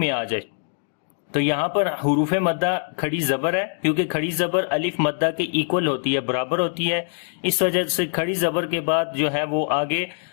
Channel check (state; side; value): silent; right; digital silence